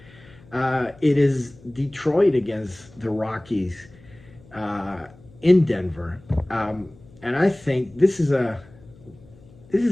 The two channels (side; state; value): left; noise; hum, 24 dB below the sound